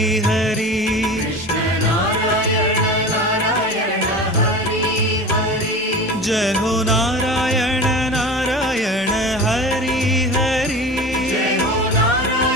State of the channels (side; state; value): both; normal; correlation 0.33